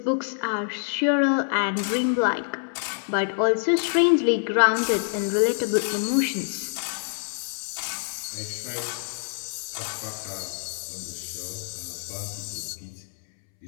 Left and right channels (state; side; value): silent; right; 61 dB below the other